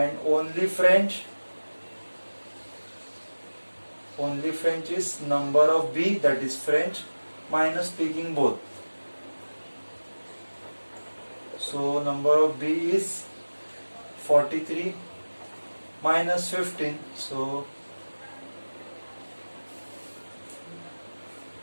only French is number of B, that is French, minus speaking both. So number of B is 43 minus 15. So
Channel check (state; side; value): inverted; both; correlation -1.00